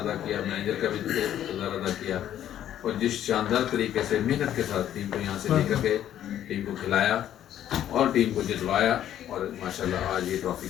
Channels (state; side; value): quieter; right; 11.2 dB